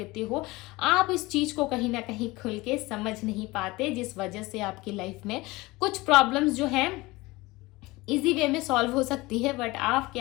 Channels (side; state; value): right; quieter; 21.4 dB